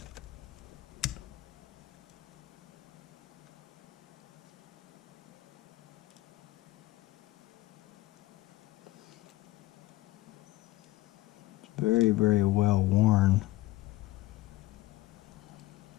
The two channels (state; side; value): quieter; right; 17.4 dB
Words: Very, very well worn.